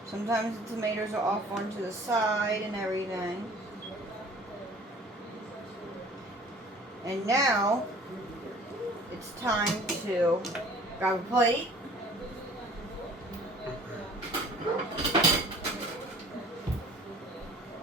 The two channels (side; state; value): both; normal; correlation 0.49